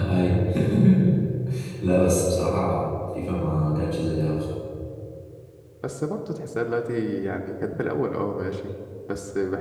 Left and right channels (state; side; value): identical; both; correlation 1.00